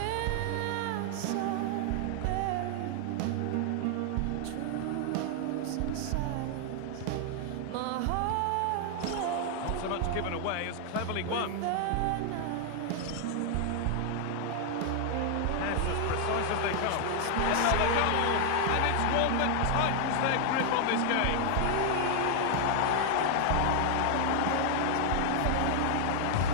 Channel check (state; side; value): different; both; correlation 0.00